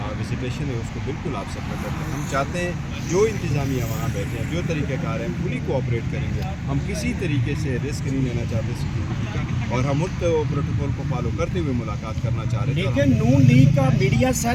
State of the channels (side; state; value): both; identical; correlation 1.00